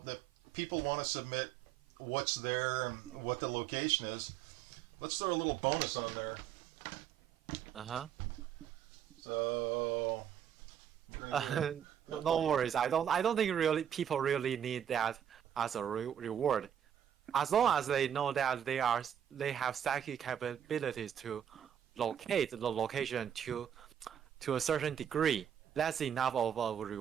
people want to submit what's there and what the location is. Let's throw a little bonus on there. Uh-huh. So No worries. I don't think really people really need that as a reward. As long as they know that they have psychic capabilities to locate the location to a certain degree, that's enough of a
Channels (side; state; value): left; quieter; 9.2 dB